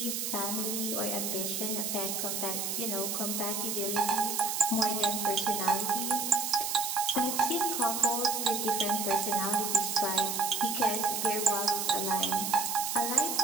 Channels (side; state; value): right; noise; hiss, 2 dB below the sound